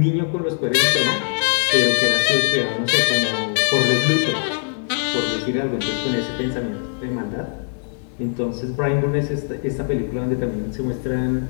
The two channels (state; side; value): silent; right; 65 dB below the other